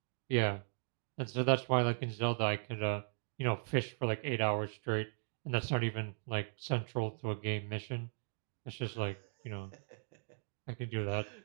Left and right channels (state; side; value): silent; left; digital silence